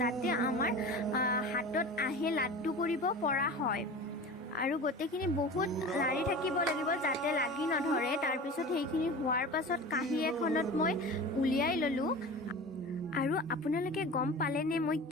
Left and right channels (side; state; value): both; normal; correlation 0.34